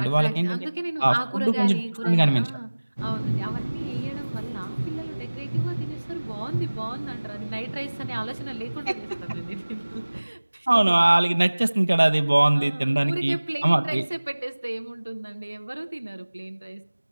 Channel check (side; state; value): both; inverted; correlation -1.00